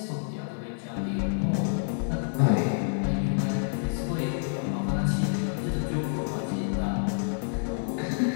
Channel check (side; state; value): right; silent; digital silence